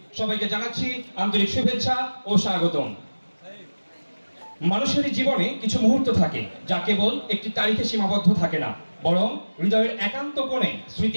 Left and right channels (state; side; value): inverted; both; correlation -1.00